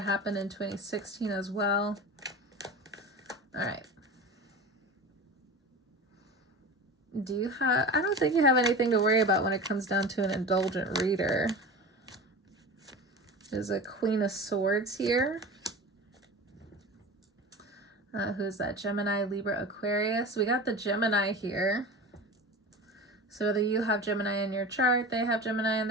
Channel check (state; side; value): normal; both; correlation 0.32